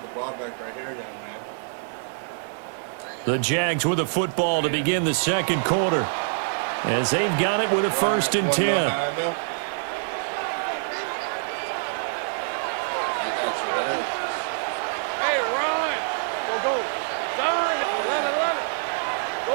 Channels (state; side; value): silent; left; 61 dB below the other